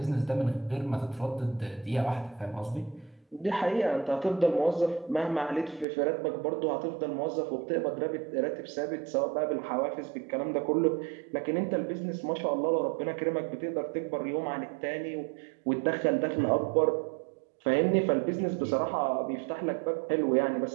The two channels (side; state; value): left; drops out; at 5.9 s